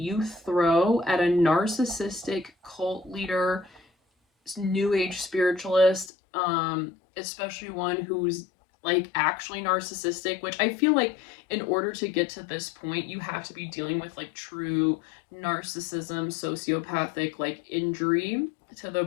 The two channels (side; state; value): right; drops out; at 6.1 s